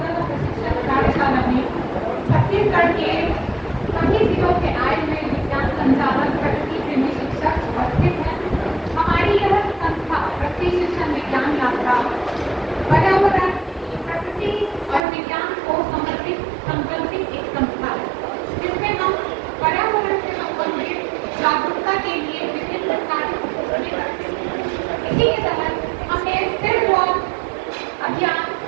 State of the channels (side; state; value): left; drops out; at 15.0 s